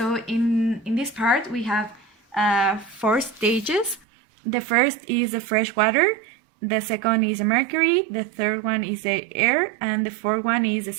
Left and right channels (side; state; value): left; drops out; at 4.0 s